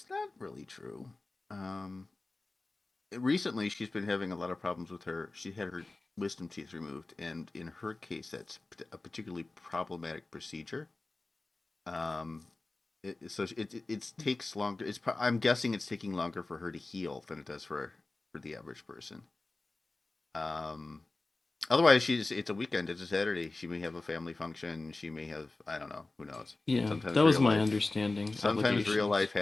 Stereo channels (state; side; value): quieter; right; 3.3 dB